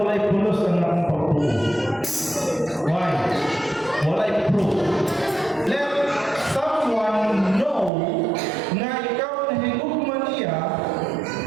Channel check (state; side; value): drops out; left; at 7.9 s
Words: pulos ang akong pagtuo. Why? Walay proof. Let someone know na ikaw na higugman niya,